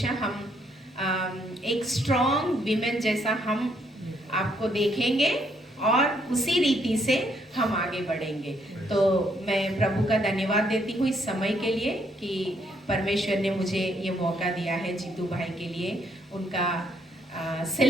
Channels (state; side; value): normal; both; correlation 0.72